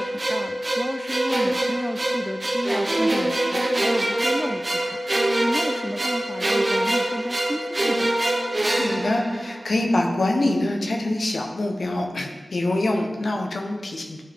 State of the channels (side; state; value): both; normal; correlation 0.96